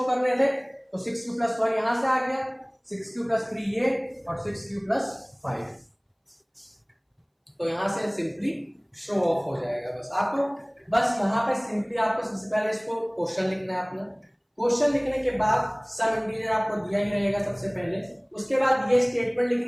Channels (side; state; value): both; identical; correlation 1.00